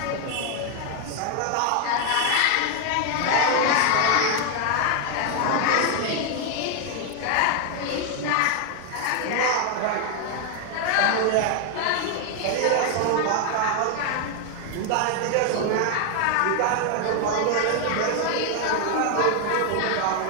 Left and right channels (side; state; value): both; different; correlation 0.00